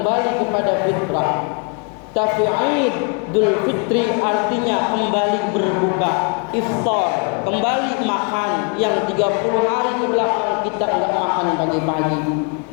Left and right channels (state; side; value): quieter; right; 36.5 dB